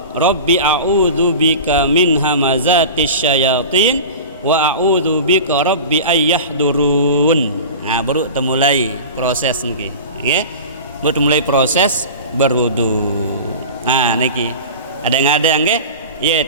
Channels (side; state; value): both; inverted; correlation -0.33